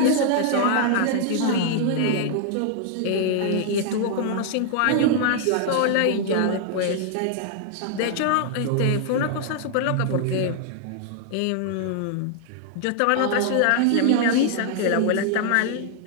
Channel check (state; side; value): different; both; correlation 0.00